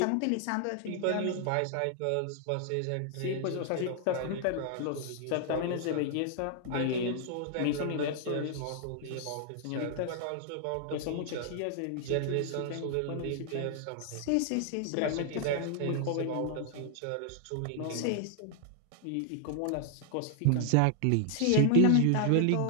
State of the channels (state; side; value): different; both; correlation 0.00